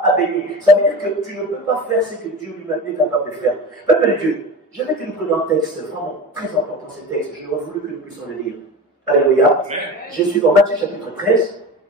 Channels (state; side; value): normal; both; correlation 0.30